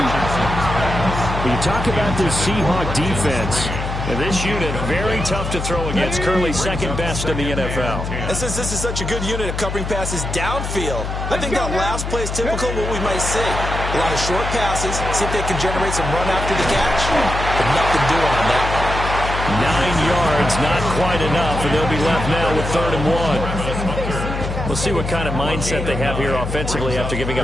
When you talk about this Seahawk defense, And this unit, very tough to throw against. Currently second best in the NFL. And since this is such a good unit of covering passes downfield, I think that last play is typical of what we might see. A lot of short passes, see if they can generate some run after the catch. But nothing doing on that one. 9 yards, not quite enough, and they'll be left now with 3rd and 1. We'll see what kind of mindset they have here offensively after giving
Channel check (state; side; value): noise; left; hum, 5 dB below the sound